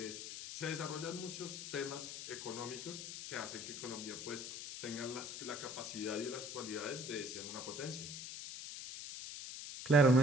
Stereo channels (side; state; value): left; noise; hiss, 8 dB below the sound